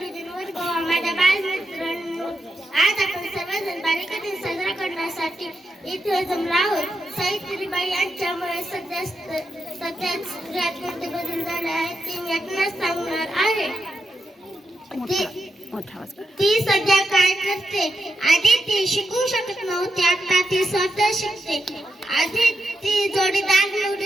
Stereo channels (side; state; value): both; normal; correlation 0.86